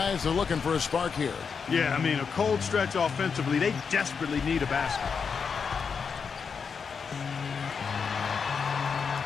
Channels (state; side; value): quieter; right; 5.9 dB